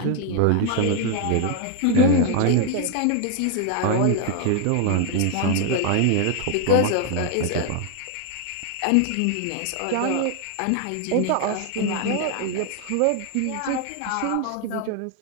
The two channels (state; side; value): different; both; correlation 0.00